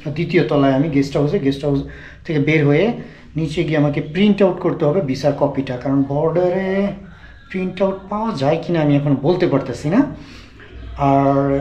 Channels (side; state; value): both; identical; correlation 1.00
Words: দ্বিতীয় তলায় আমি গেস্ট হাউস থেকে বের হয়ে নিচে গিয়ে আমাকে প্রিন্ট আউট করতে হবে ভিসার কপিটা, কারণ বর্ডারে প্রিন্ট আউট পাওয়া যায় কিনা আমি এখন বলতে পারতেছি না। আর